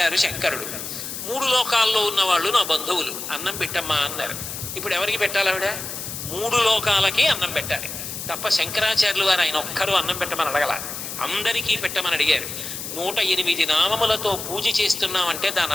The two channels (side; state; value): left; noise; hiss, 7 dB below the sound